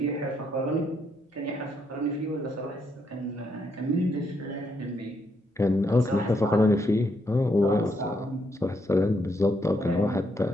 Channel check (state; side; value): normal; both; correlation 0.76